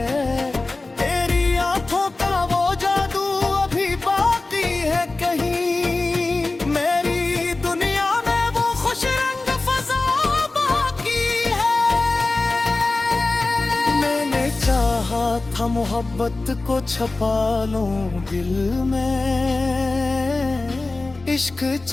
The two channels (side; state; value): right; quieter; 3.3 dB